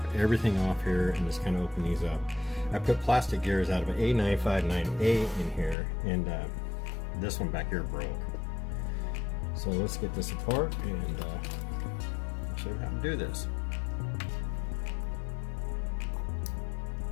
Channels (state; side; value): drops out; right; at 5.8 s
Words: everything off here and just kind of open these up. I put plastic gears out of an A959A in here, and this one back here broke. So let's get this apart and I'll show you how to do this.